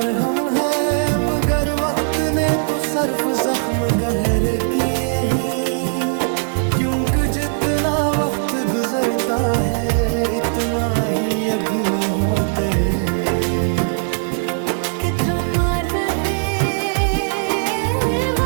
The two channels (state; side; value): silent; left; digital silence